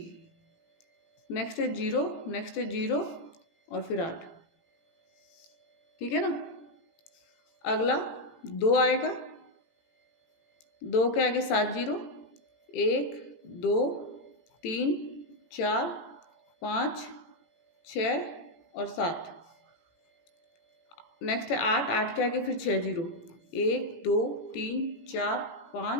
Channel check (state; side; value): late; right; 17 ms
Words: नेक्स्ट है 0, नेक्स्ट है 0 और फिर 8। ठीक है ना। अगला 2 आएगा, 2 के आगे 7 जीरो, 1 2 3 4 5 6 और 7। नेक्स्ट है 8, 8 के आगे फिर 6 जीरो, 1 2 3 4